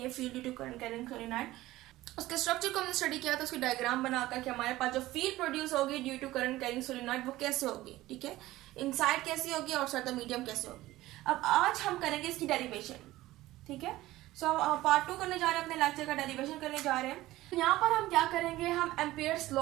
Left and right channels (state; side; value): quieter; left; 16.8 dB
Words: field due to current carrying solenoid, उसके स्ट्रक्चर को हमने स्टडी किया था। उसकी डायग्राम बनाकर कि हमारे पास जो फील्ड प्रोड्यूस होगी due to current carrying solenoid वो कैसे होगी, ठीक है, इनसाइड कैसी होगी और आउटसाइड द मीडियम कैसे होगी। अब आज हम करेंगे इसकी डेरिवेशन, ठीक है। सो पार्ट 2 करने जा रहे हैं, अपने लेक्चर का डेरिवेशन करने जा रहे हैं। यहाँ पर हम क्या करेंगे, हम एम्पियर्स